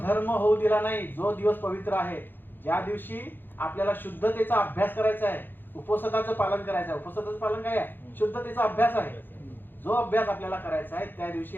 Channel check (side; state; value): right; late; 0.095 ms